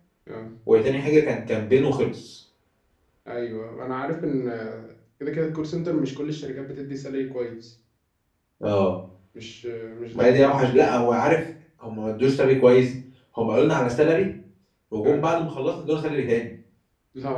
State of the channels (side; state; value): both; identical; correlation 1.00